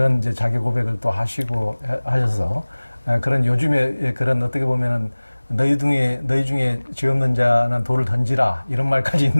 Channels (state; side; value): inverted; both; correlation -1.00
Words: 이제 자기 고백을 또 하시고 하셔서 그런 요즘에 그런 어떻게 보면은 너희 중에 죄 없는 자는 돌을 던지라 이런 말까지